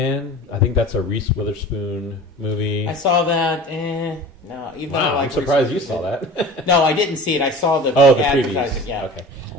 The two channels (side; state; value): both; normal; correlation 0.39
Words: I think that's a Reese Witherspoon movie. I saw that. No, even though I Wow, like I'm surprised you Reese saw that. Witherspoon. No, I didn't see it. I saw the Oh, the advertising. previews. Yeah. Okay.